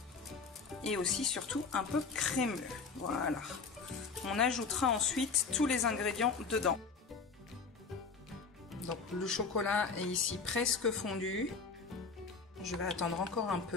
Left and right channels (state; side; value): quieter; right; 4.9 dB